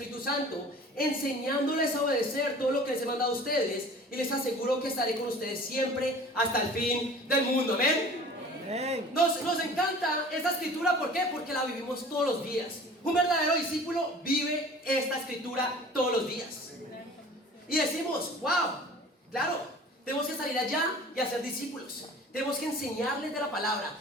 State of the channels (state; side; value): normal; both; correlation 0.44